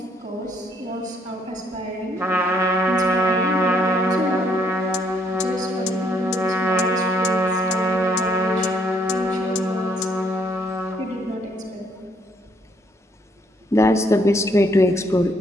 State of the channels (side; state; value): both; normal; correlation 0.69